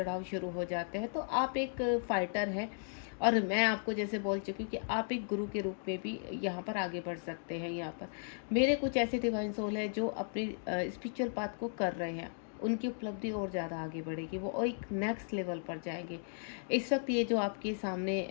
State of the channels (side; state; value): right; silent; digital silence